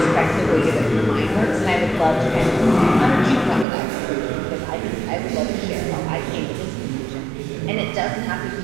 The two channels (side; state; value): left; drops out; at 3.7 s